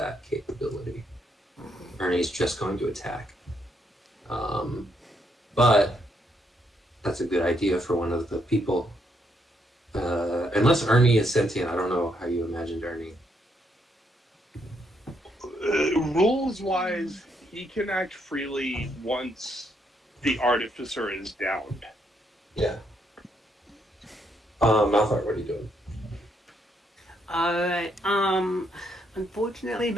capability. Ernie's just going to attack. But that's a good idea for one of the people. Unless Ernie is sentient, I don't know how you imagined Ernie. Rules-wise, he can act freely once the artificer is downed. Yeah. Malthar, what are you doing? Alright, unfortunately,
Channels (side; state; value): both; normal; correlation 0.75